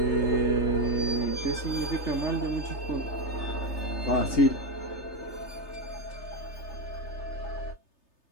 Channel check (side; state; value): right; late; 3.3 ms